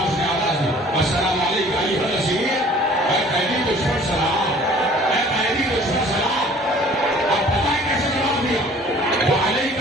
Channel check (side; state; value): both; normal; correlation 0.51